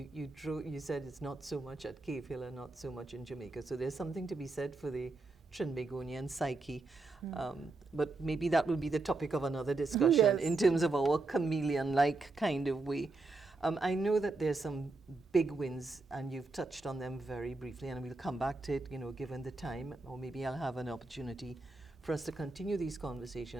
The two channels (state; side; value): quieter; left; 3.4 dB